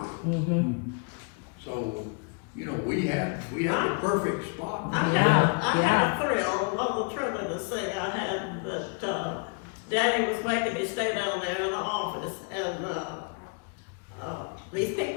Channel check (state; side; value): quieter; right; 34.1 dB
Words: Mm-hmm. So, you know, we had a perfect spot. I Yeah, had a thrill, one of the thrillingest thing I had that, Daddy was making me stay down there in the office, and, these